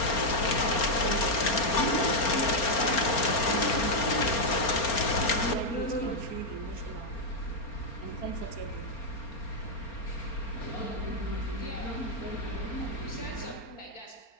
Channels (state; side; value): late; right; 4.3 ms